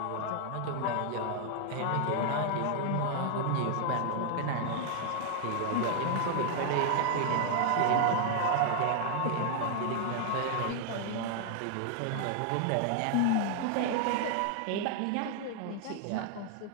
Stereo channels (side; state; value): both; different; correlation 0.00